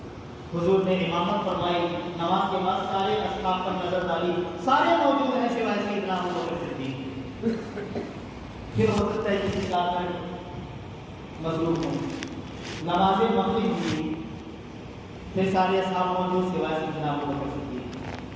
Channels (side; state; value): both; identical; correlation 1.00